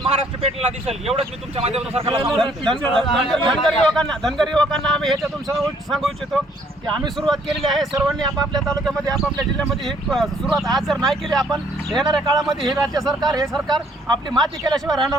महाराष्ट्र पेटलेला दिसेल. एवढंच मी तुमच्या माध्यमातून सरकारला धनगर युवकांना आम्ही ह्याच्यातून सांगू इच्छितो की आम्ही सुरुवात केलेली आहे. सर्वांनी आपापल्या तालुक्यामध्ये आपापल्या जिल्ह्यामध्ये ही सुरुवात आज जर नाही केली आपण येणाऱ्या काळामध्ये हे राज्य सरकार हे सरकार आपली माती केल्याशिवाय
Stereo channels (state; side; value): normal; both; correlation 0.64